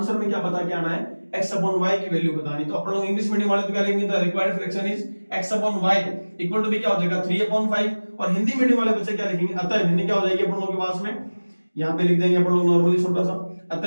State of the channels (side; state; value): both; inverted; correlation -1.00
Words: में क्या बता के आना है, x/y की वैल्यू बतानी। तो अपन लोग इंग्लिश मीडियम वाले तो क्या लिखेंगे, the required fraction is x/y equal to भी क्या हो जाएगा 3/5, और हिंदी मीडियम वाले बच्चे क्या लिखेंगे, अतः भिन्न क्या हो जाएगी अपन लोगों के पास में, यहाँ पे लिख देंगे अपन लोग नॉर्मली छोटा सा,